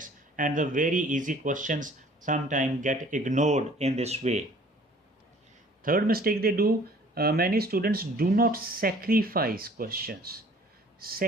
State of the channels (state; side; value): normal; both; correlation 0.53